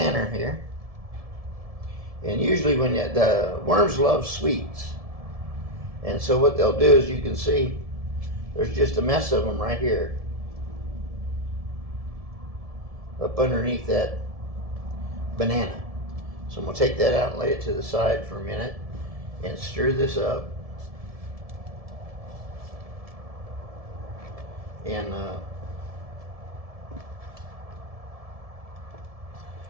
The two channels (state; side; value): late; left; 1.7 ms